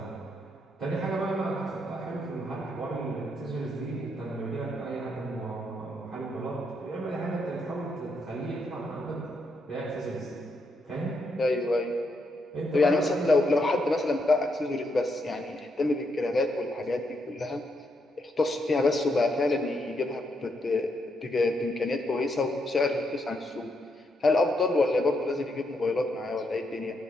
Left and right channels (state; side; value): normal; both; correlation 0.78